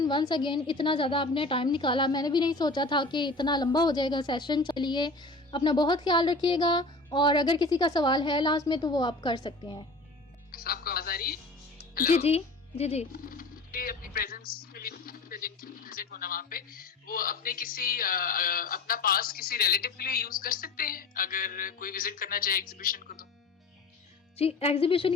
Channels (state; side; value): quieter; right; 3.2 dB